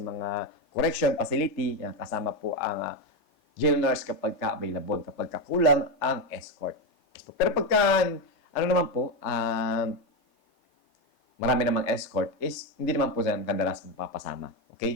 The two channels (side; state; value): right; late; 3.3 ms